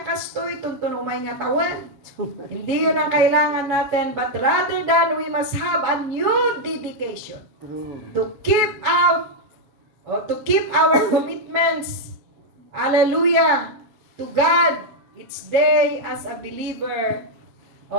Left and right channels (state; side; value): late; left; 7.1 ms